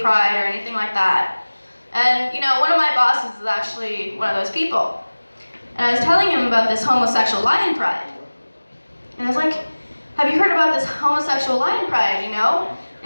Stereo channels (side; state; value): both; inverted; correlation -1.00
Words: or anything like that. And, you know, one of my bosses is actually one of those people. And I was telling him about this homosexual lion pride. And I was like, have you heard about this homosexual lion pride, you know?